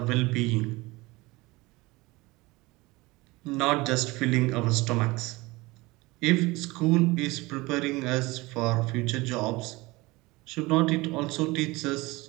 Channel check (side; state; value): left; quieter; 22.1 dB